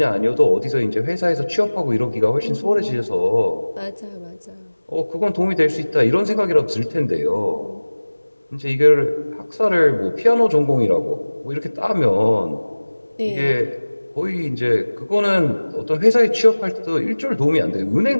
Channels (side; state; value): both; inverted; correlation -1.00